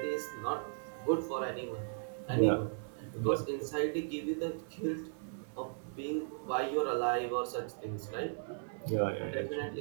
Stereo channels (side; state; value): left; silent; digital silence